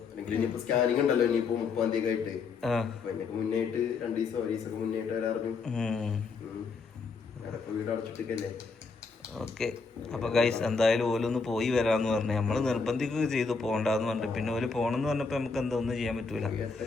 അല്ലെങ്കിൽ ഇനിയിപ്പോ സ്കാനിങ് ഉണ്ടല്ലോ, ഇനിയിപ്പോ 30-ാം തീയതി ആയിട്ട്. അതിനൊക്കെ മുന്നേറ്റ് 2 ദിവസം 1 ദിവസം മുന്നേറ്റ് വരാറുണ്ട്. വീട് അടച്ചിട്ടല്ലേ. ഓക്കെ, അപ്പൊ ഗൈസ് എന്തായാലും ഓലൊന്ന് പോയി വരാന്ന് പറഞ്ഞു. നമ്മള് നിർബന്ധിക്കുക ചെയ്തു പോകണ്ടെന്ന് പറഞ്ഞിട്ട്, പിന്നെ ഓല് പോണെന്ന് പറഞ്ഞപ്പോ നമുക്ക് എന്താ ഒന്നും ചെയ്യാൻ പറ്റൂല.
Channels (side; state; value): right; quieter; 4.7 dB